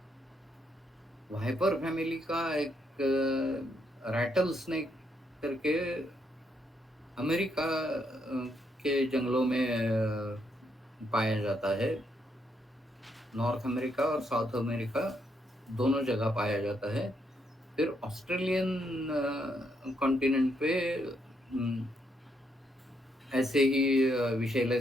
वाइपर फैमिली का एक रैटल स्नेक करके अमेरिका के जंगलों में पाया जाता है। नॉर्थ अमेरिका और साउथ अमेरिका दोनों जगह पाया जाता है। फिर ऑस्ट्रेलियन कॉन्टिनेंट पे ऐसे ही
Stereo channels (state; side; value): normal; both; correlation 0.76